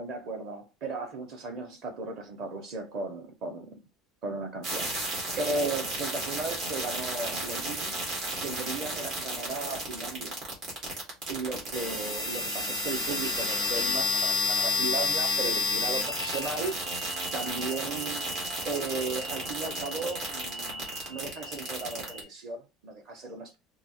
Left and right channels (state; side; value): normal; both; correlation 0.39